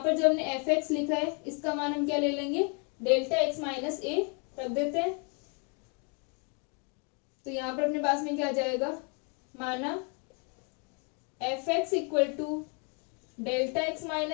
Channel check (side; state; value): right; quieter; 35.9 dB